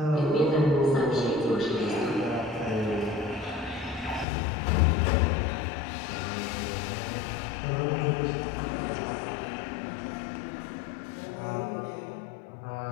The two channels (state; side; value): drops out; right; at 4.2 s